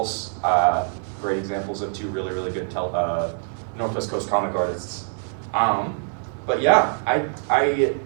great examples of two really good Northwest Coast comic artists. But yeah,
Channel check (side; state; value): left; silent; 63 dB below the other